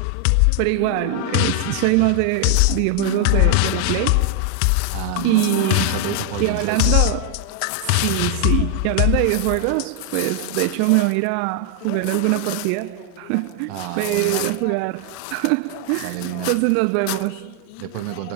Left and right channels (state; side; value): different; both; correlation 0.00